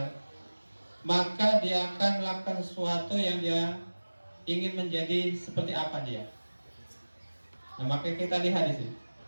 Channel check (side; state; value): both; inverted; correlation -1.00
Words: maka dia akan melakukan sesuatu yang dia ingin menjadi seperti apa dia. Nah, maka kita lihat di sini.